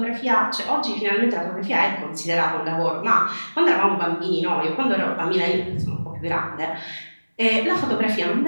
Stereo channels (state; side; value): inverted; both; correlation -1.00